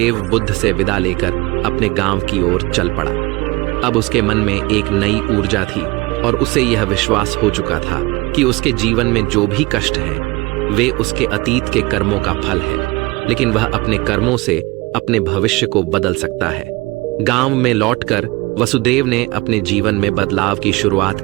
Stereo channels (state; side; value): quieter; left; 23.2 dB